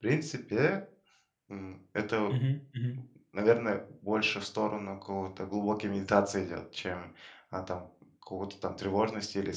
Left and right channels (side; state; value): both; identical; correlation 1.00